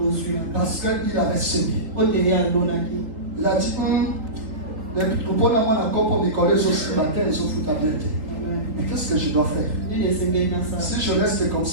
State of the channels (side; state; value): left; late; 3.9 ms